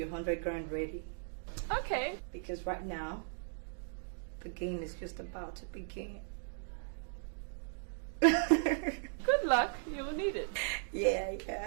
100 grand ready. Okay. Because right now, the game is just about to begin. Good luck. You'll need it. Yeah.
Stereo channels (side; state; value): left; silent; digital silence